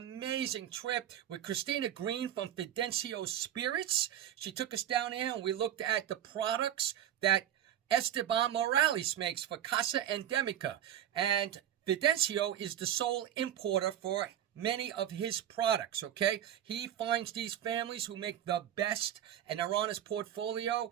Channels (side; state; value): left; quieter; 10.9 dB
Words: trip with Christina Green from Fidencio Spirits. She took us down there and we looked at the products that Esteban Morales makes for Casa Endemica. And Fidencio is the sole importer for many of his products, okay? He finds these families who make the best, and they're on his portfolio,